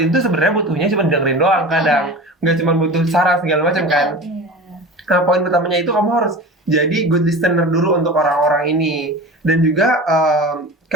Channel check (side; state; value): both; normal; correlation 0.34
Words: itu sebenarnya butuhnya cuma dengerin doang, kadang nggak cuma butuh saran segala macam kan. Nah, poin pertamanya itu kamu harus jadi good listener dulu untuk orang-orang ini, dan juga